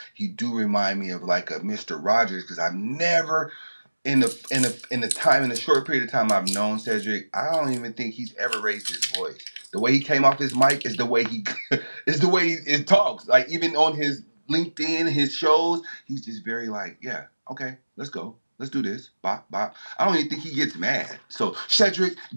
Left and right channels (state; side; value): inverted; both; correlation -1.00